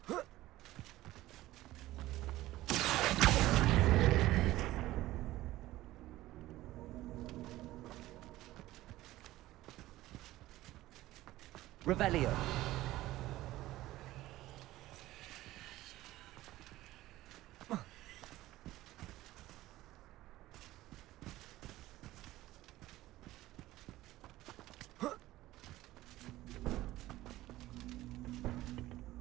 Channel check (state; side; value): quieter; left; 16.4 dB